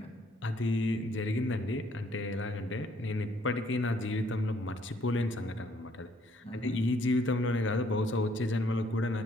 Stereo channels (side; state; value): both; normal; correlation 0.66